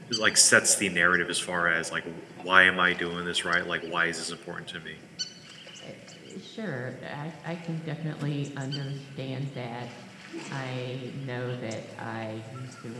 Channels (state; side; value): identical; both; correlation 1.00